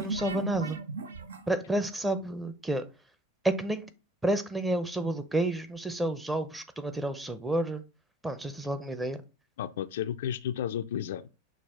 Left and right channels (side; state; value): both; normal; correlation 0.55